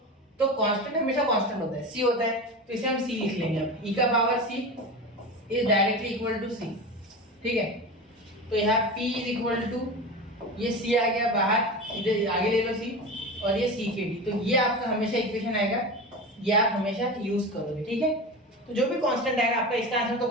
तो कांस्टेंट हमेशा कांस्टेंट होता है, c होता है, तो इसे हम c लिख लेंगे। अब e का power c is directly equal to c, ठीक है, तो यहाँ p इज इक्वल टू ये c आ गया बाहर, इधर आगे ले लो c और ये c के डी, तो ये आपका हमेशा इक्वेशन आएगा, ये आप हमेशा यूज करोगे, ठीक है। तो जो भी कांस्टेंट आएगा आपका, इसका आंसर तो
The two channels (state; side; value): normal; both; correlation 0.27